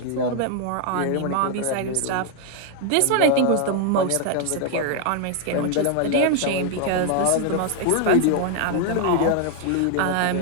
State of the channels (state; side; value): different; both; correlation 0.00